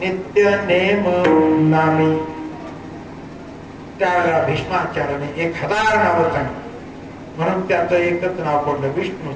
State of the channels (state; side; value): identical; both; correlation 1.00